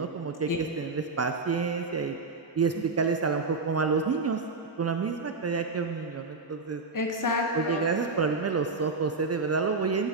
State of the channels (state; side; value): quieter; left; 3.7 dB